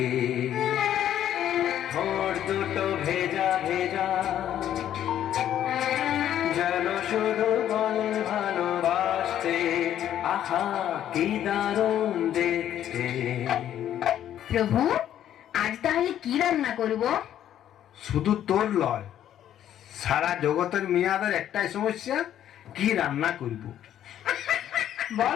ঠোঁট দুটো ভেজা ভেজা, যেন শুধু বলে ভালোবাসতে। আহা কি দারুণ দেখতে। প্রভু, আজ তাহলে কি রান্না করব? শুধু তোর লয়, সারা জগতের মেয়াদের একটাই সমস্যা, কি রান্না করব।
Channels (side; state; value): right; quieter; 11.0 dB